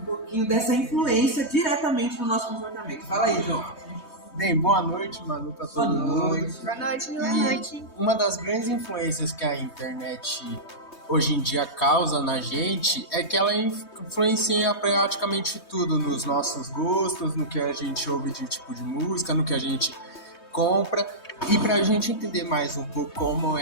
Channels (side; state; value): right; late; 3.2 ms